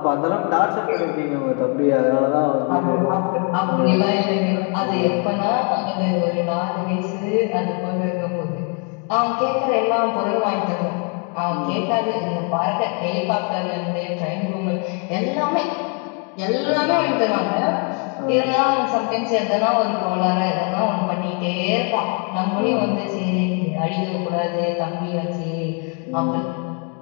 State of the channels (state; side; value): quieter; right; 38.2 dB